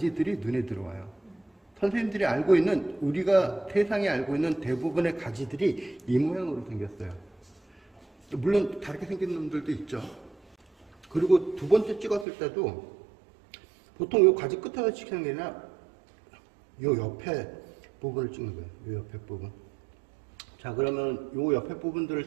눈에 들어와요. 선생님들이 알고 있는, 우리가 세상에 알고 있는 대부분의 가지들이 이 모양으로 생겼어요. 물론 다르게 생긴 놈들도 있죠. 그리고 두 번째 찍었을 때도 보통 요 가지 끝에서 찍는 게 아니라 요 옆에 부분을 찍는 거예요. 요 옆에 부분. 자, 그러면 요 옆에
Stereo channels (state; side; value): drops out; left; at 12.2 s